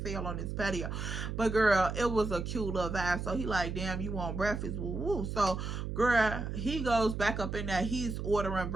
hell on this patio. But girl, it was a cute little vibe. So he like, damn, you want breakfast? Woo woo. So girl, he goes back up in there. He's ordering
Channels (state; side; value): noise; right; hum, 4 dB below the sound